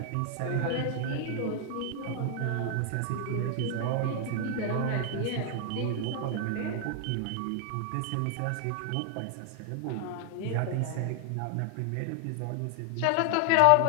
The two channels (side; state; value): both; different; correlation 0.00